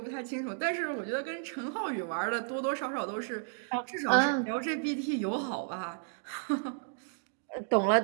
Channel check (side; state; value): left; silent; digital silence